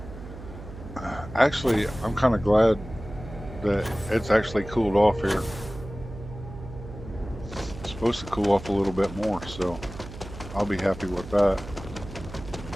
Actually, I'm kind of glad that it's actually cooled off here. It's supposed to cool off a little bit more, so I'll be happy with that.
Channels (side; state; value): right; noise; hum, 13 dB below the sound